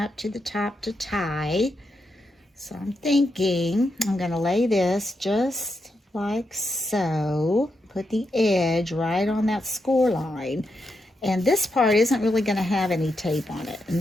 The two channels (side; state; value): both; normal; correlation 0.84